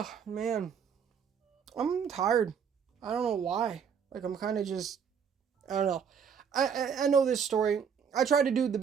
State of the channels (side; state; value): left; quieter; 7.1 dB